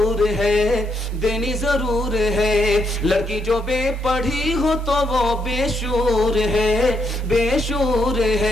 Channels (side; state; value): both; normal; correlation 0.77